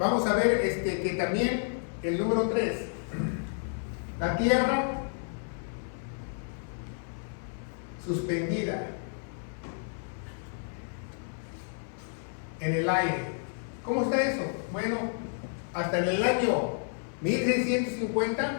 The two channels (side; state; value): right; silent; 57 dB below the other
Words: a ver que también el número 3, la Tierra suspendida en el aire. ¿Cómo está eso? Bueno, hasta en el año